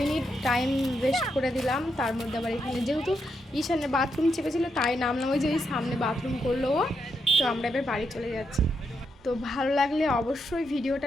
মিনিট টাইম ওয়েস্ট করে দিলাম। তার মধ্যে আবার এখানে যেহেতু ঈশানের বাথরুম চেপেছিল তাই নামলাম, ওই যে ওই সামনে বাথরুম করলো ও। তো আমরা এবার বাড়ি চলে যাচ্ছি। তো ভালো লাগলে অবশ্যই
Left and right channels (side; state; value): both; normal; correlation 0.82